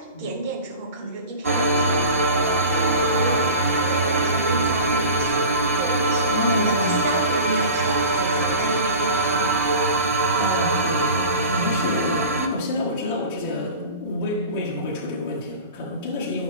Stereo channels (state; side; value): inverted; both; correlation -0.36